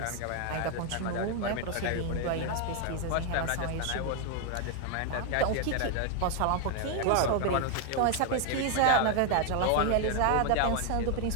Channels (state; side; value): different; both; correlation 0.01